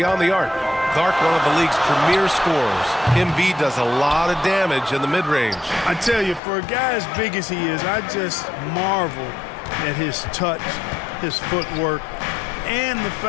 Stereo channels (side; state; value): right; drops out; at 6.4 s